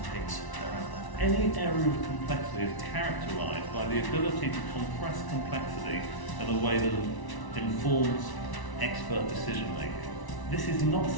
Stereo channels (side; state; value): right; late; 1.0 ms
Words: the pigs that are out there. Any area of complexity is characterised by the ability to compress complexity in a way that informs expert decision making. This is not